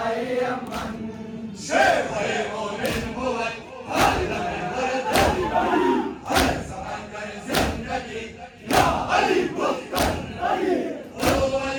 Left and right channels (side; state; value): both; identical; correlation 1.00